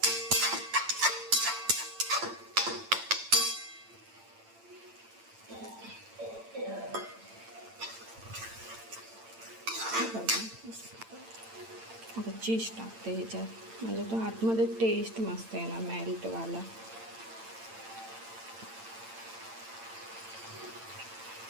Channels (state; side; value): late; left; 8.9 ms